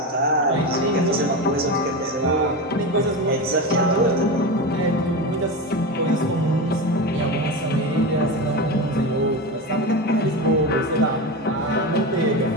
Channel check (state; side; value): normal; both; correlation 0.21